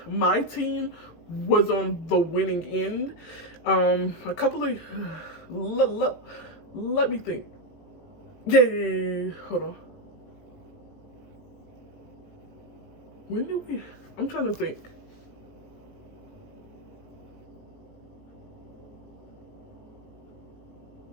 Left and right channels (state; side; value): late; right; 18 ms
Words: my team was on the winning end. A couple of, let me think. Yeah, hold on. When did we, I'm trying to think.